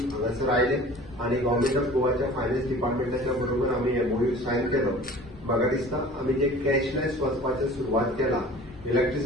हांगासर आयले आणि गव्हर्नमेंट ऑफ गोवाच्या फायनान्स डिपार्टमेंटाच्या बरोबर आमी MOU सायन केलो. म्हाका दिसता आमी जे कॅशलेस वचपाची सुरवात केला,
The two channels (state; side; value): normal; both; correlation 0.44